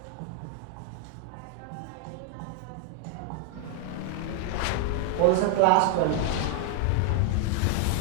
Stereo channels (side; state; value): both; different; correlation 0.00